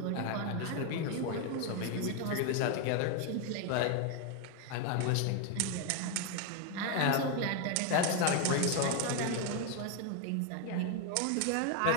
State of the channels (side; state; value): both; different; correlation 0.01